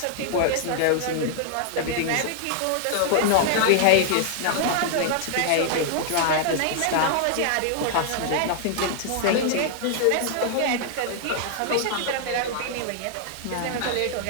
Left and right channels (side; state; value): both; different; correlation -0.01